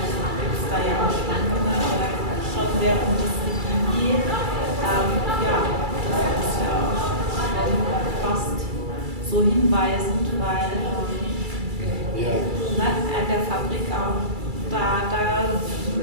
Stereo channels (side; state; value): left; late; 2.3 ms